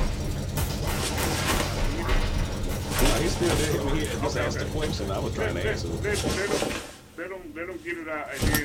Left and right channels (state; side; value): identical; both; correlation 1.00